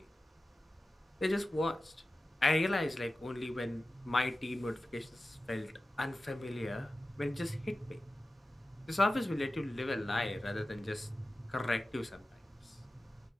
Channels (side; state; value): both; normal; correlation 0.95